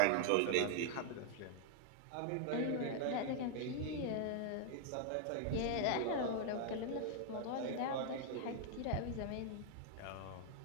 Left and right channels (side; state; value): both; different; correlation 0.00